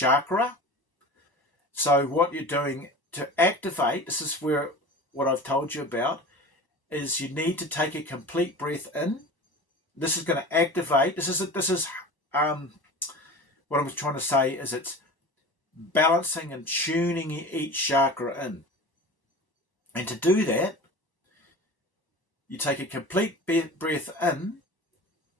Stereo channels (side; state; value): right; late; 1.0 ms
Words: So what you're doing to activate, this is where what I've told you about, is you need to take a complete breath in. This is going to activate. This is what I'm trying to say is it's balancing and tuning each chakra in. And to do that, you take a complete breath in,